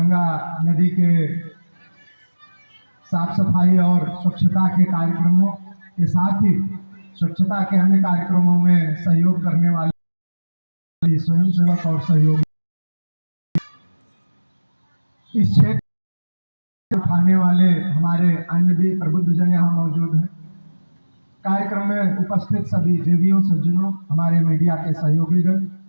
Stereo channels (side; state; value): both; inverted; correlation -1.00